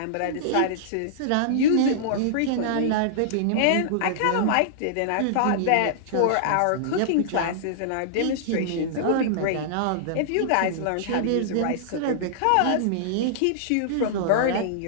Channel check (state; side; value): different; both; correlation -0.02